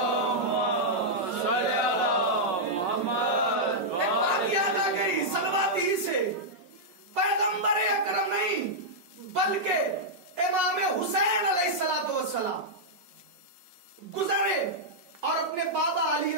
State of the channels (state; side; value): late; left; 5.5 ms